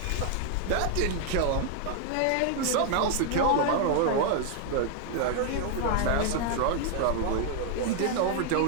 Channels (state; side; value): different; both; correlation 0.00